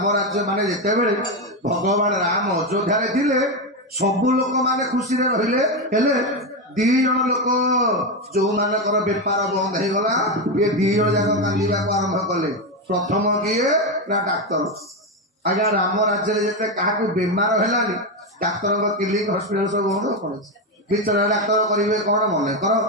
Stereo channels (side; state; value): both; normal; correlation 0.10